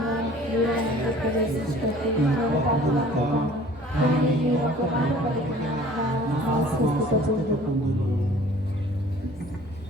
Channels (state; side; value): normal; both; correlation 0.50